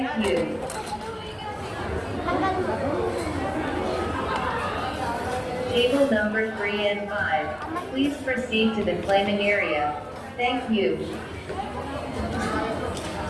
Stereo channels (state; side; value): identical; both; correlation 1.00